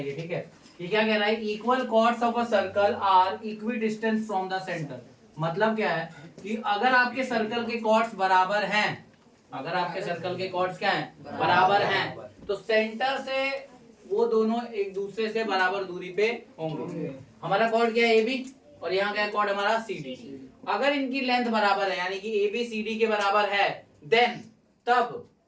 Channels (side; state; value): both; identical; correlation 1.00